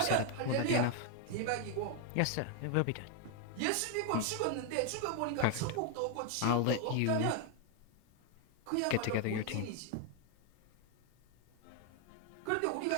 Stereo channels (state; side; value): different; both; correlation 0.00